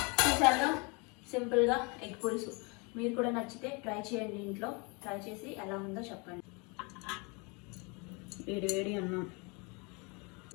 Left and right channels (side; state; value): right; quieter; 30.2 dB